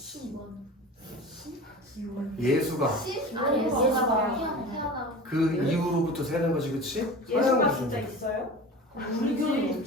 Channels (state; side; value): normal; both; correlation 0.34